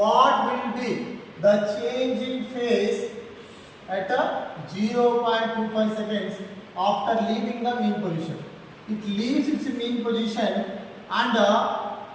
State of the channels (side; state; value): both; identical; correlation 1.00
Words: will be the change in phase at 0.25 seconds after leaving the mean position. It leaves its mean position and at